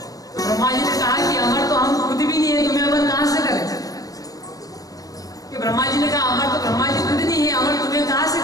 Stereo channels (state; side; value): late; right; 0.17 ms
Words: तो ब्रह्मा जी ने कहा कि अमर तो हम खुद भी नहीं है, तुम्हें अमर कहां से करें? कि ब्रह्मा जी ने कहा अमर तो ब्रह्मा जी खुद नहीं है, अमर तुम्हें कहां से